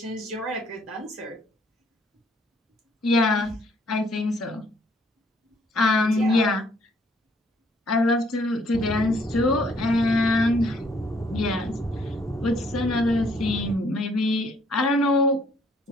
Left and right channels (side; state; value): both; normal; correlation 0.65